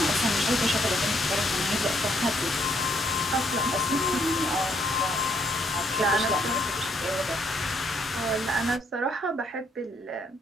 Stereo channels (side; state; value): both; normal; correlation 0.71